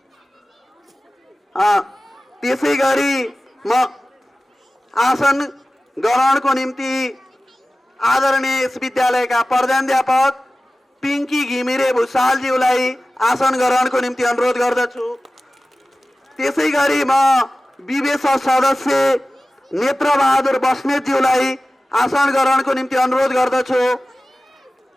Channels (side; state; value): both; normal; correlation 0.96